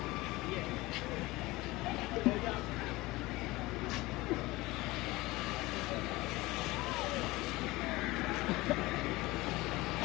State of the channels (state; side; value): quieter; right; 20.5 dB